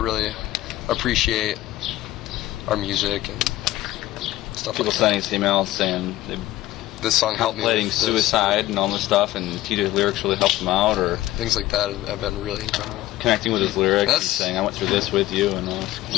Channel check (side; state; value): right; quieter; 15.8 dB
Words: appreciate our music and stuff people like sending that. us emails saying This song helped me contemplating with suicide and all this stuff, and Tito's lyrics really helped him out, or things like that have been really incredible. Connecting with his lyrics and saying, I went through this with you, and all that.